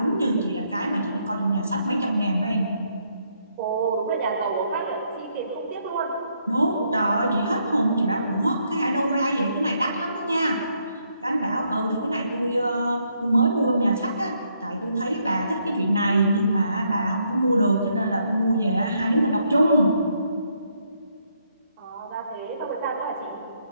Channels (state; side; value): inverted; both; correlation -0.74